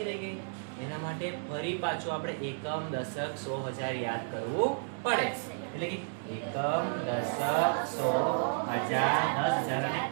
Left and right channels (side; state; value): left; silent; digital silence